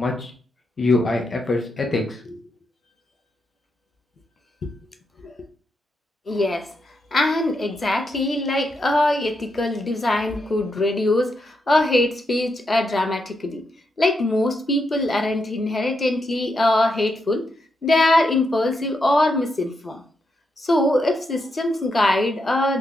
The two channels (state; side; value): normal; both; correlation 0.83